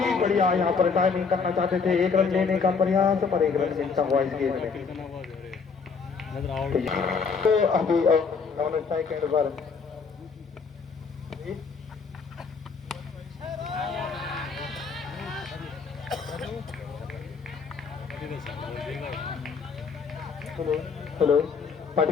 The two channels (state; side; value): quieter; right; 5.3 dB